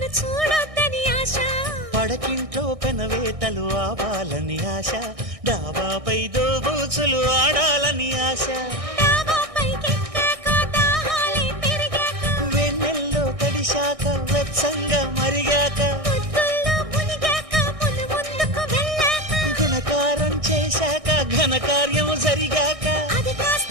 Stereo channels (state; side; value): late; left; 1.6 ms